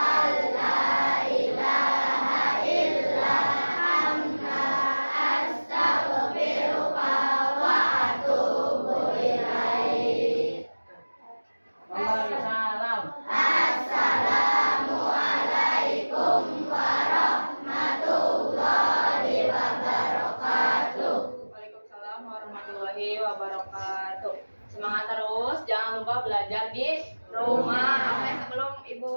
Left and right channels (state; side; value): inverted; both; correlation -1.00